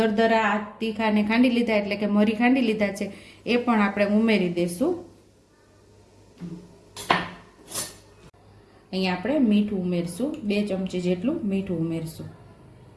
તીખાને ખાંડી લીધા એટલે કે મરી ખાંડી લીધા છે એ પણ આપણે ઉમેરી દેશું। અહીંયા આપણે મીઠું ઉમેરશું, 2 ચમચી જેટલું મીઠું ઉમેરશું,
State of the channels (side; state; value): both; identical; correlation 1.00